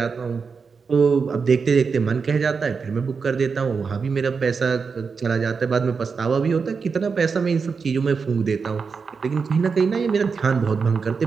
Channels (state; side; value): quieter; left; 5.3 dB